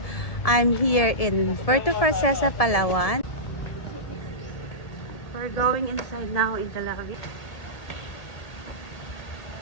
I'm here in Puerto Princesa, Palawan. We're going inside now in the lobby.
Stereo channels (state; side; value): late; right; 1.7 ms